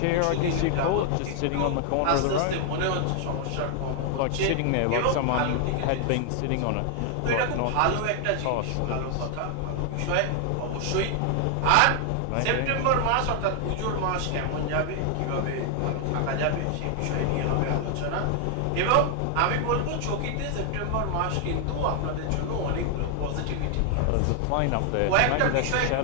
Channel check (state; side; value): different; both; correlation 0.00